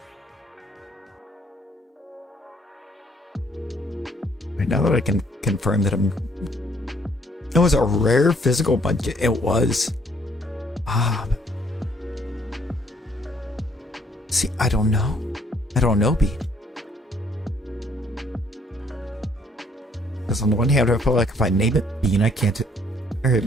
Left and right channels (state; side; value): normal; both; correlation 0.64